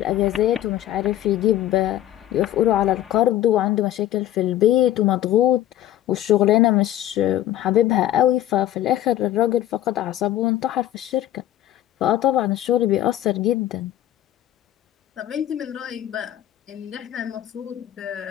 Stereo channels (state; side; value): quieter; right; 12.8 dB